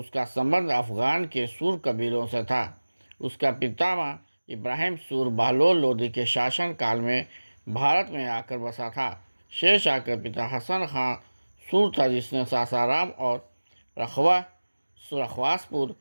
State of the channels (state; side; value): inverted; both; correlation -1.00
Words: संबंध अफ़गान के सूर कबीलों से था। उसका पितामह इब्राहिम सूर बहलोल लोदी के शासनकाल में भारत में आकर बसा था। शेरशाह के पिता हसन खां सूर था, जिसने सासाराम और रखवासपुर